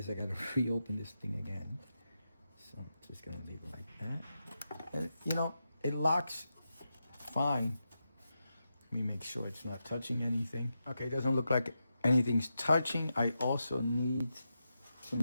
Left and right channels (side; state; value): both; inverted; correlation -0.88